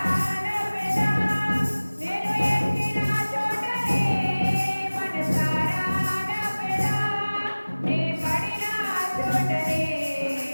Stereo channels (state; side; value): inverted; both; correlation -1.00